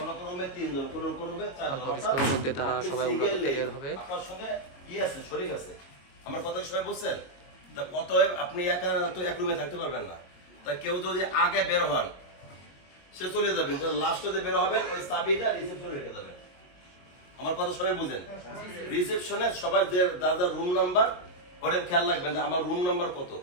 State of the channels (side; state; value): right; late; 22 ms